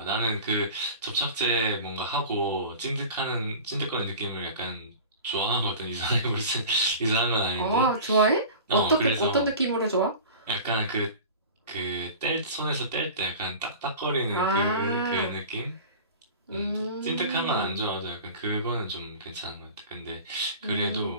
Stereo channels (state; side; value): inverted; both; correlation -0.37